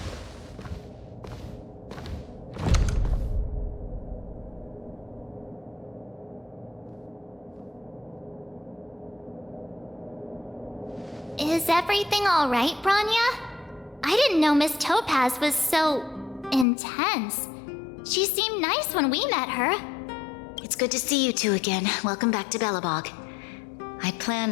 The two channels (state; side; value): drops out; right; at 16.7 s